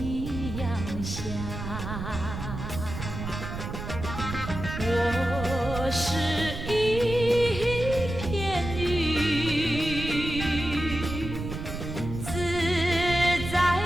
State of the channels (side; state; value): right; noise; rumble, 7 dB below the sound